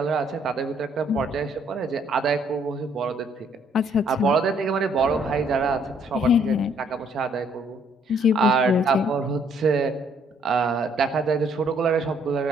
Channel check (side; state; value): both; normal; correlation 0.66